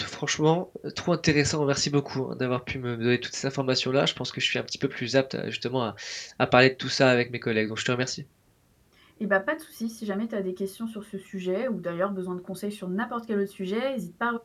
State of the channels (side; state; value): both; identical; correlation 1.00